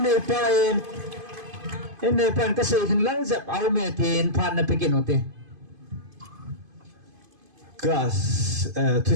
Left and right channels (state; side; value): late; left; 2.5 ms